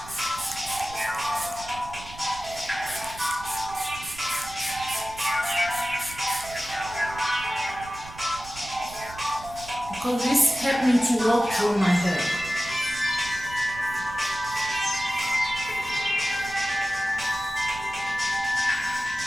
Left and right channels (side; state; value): right; noise; rumble, 16 dB below the sound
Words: Because this helped me to walk through my hair.